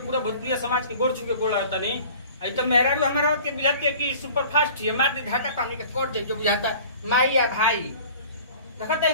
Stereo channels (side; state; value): both; inverted; correlation -0.45